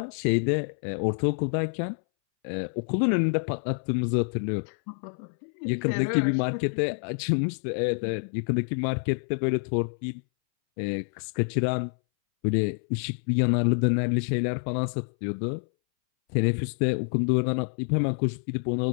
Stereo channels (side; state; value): right; silent; 60 dB below the other